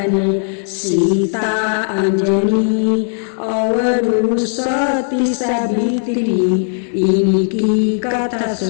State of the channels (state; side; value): silent; right; digital silence